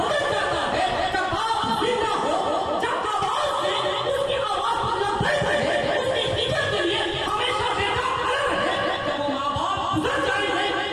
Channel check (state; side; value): identical; both; correlation 1.00